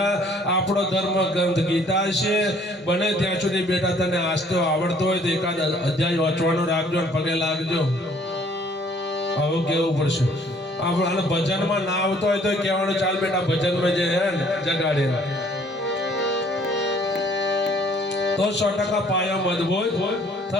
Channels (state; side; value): normal; both; correlation 0.59